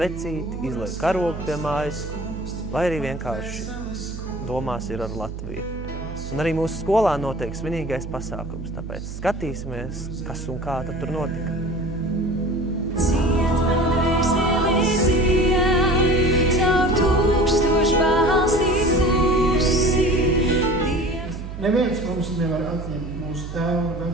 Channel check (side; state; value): right; noise; hum, 9 dB below the sound